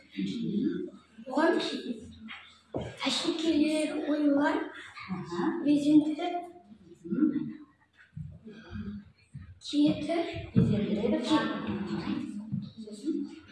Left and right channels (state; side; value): identical; both; correlation 1.00